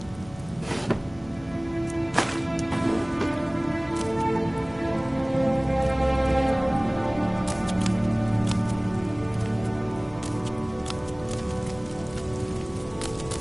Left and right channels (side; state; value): left; noise; hum, 21 dB below the sound